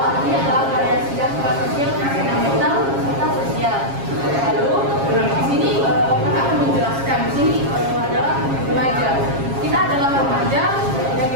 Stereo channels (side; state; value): left; late; 7.4 ms